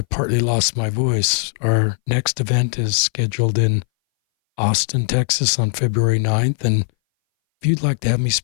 partly lost my voice. Our next event is scheduled in Austin, Texas on February 9th. And if you'd like to have me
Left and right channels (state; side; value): silent; right; 61 dB below the other